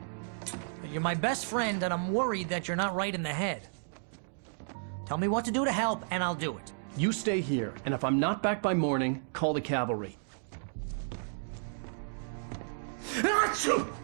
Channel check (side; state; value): left; silent; digital silence